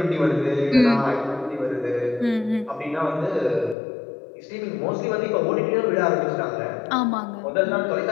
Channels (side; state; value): right; drops out; at 3.8 s